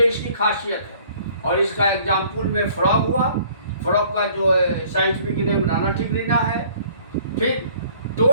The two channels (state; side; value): inverted; both; correlation -0.56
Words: इसकी खासियत है। और इसका एग्जाम्पल में फ्रॉग हुआ। फ्रॉग का जो साइंटिफिक नेम राना टिग्रिना है। फिर